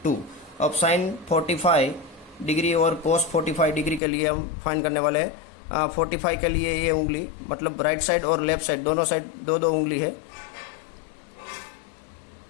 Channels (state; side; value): drops out; right; at 4.0 s